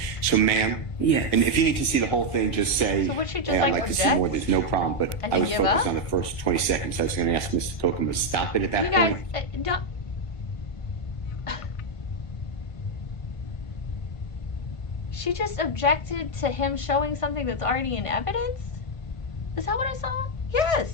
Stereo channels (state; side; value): late; right; 1.6 ms